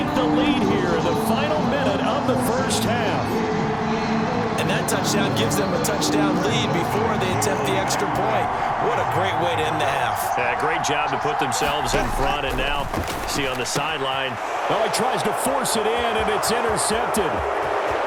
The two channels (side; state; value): both; identical; correlation 1.00